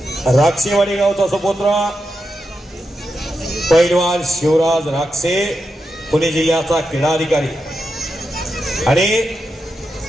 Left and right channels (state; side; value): normal; both; correlation 0.87